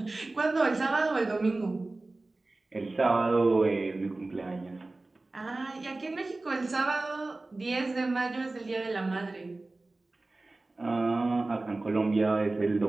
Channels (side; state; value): left; quieter; 3.1 dB